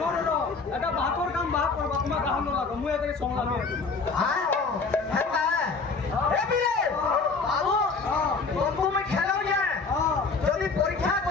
এটা বাকর কাম বাক করবা তোমার কাম ন লাগো মুই এটাকে সমলা হ্যাঁ হেতা এ বিরে বাবু তুমি খেলাও যে যদি পরীক্ষা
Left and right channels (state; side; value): quieter; right; 4.4 dB